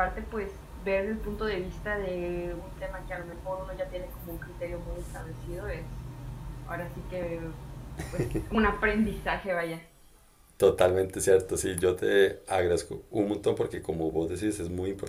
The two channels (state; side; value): identical; both; correlation 1.00